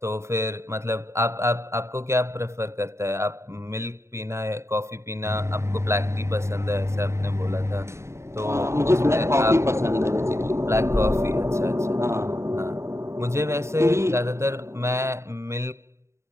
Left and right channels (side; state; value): left; late; 0.13 ms